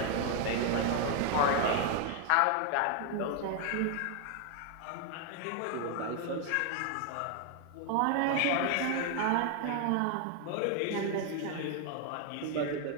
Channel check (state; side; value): different; both; correlation 0.00